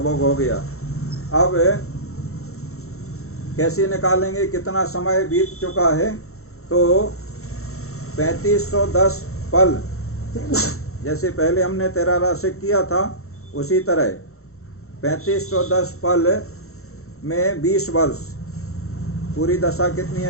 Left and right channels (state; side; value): late; right; 0.63 ms